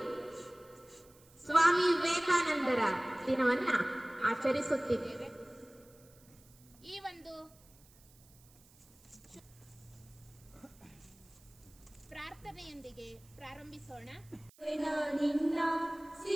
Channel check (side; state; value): right; noise; hiss, 27 dB below the sound